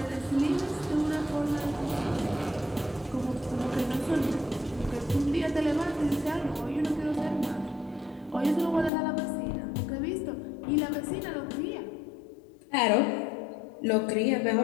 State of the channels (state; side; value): drops out; right; at 8.9 s